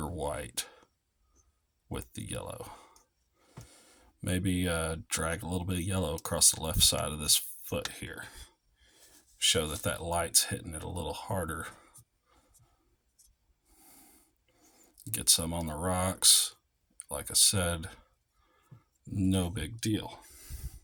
white with the yellow. Maybe drag a little bit of yellow across the left side of this foot here. Show that light's hitting it a little harder. Get some on the rocks. Like I said, no big deal.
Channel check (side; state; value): both; identical; correlation 1.00